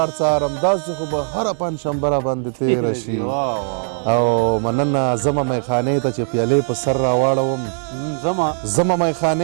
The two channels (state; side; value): silent; left; 66 dB below the other